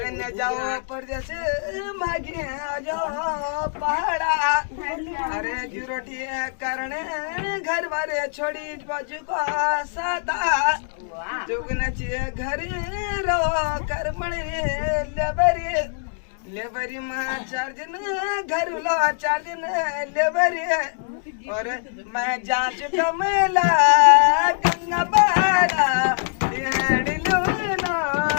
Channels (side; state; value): right; silent; digital silence